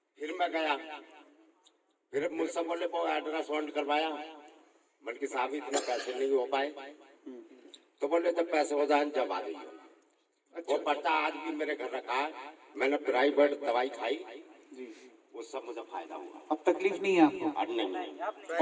फिर मैं गया, फिर मुझसे बोले वो अल्ट्रासाउंड करवाया। मन के साहब इतने पैसे नहीं हो पाए, तो बोले जब पैसे हो जाए जब आ जाइए। वो पर्चा आज भी मेरे घर रखा है, मैंने प्राइवेट दवाई खाई, उससे मुझे फायदा हुआ। अब तकलीफ नहीं है आपको?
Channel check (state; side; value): identical; both; correlation 1.00